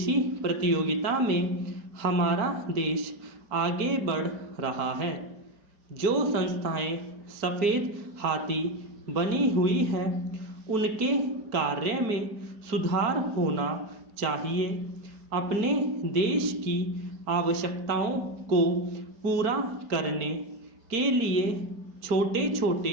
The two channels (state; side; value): late; left; 4.4 ms